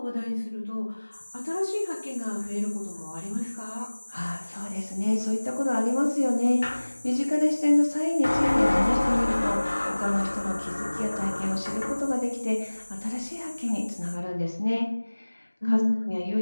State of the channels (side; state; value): both; inverted; correlation -1.00